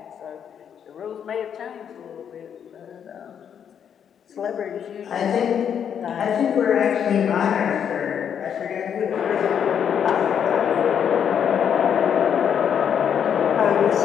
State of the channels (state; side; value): quieter; right; 8.2 dB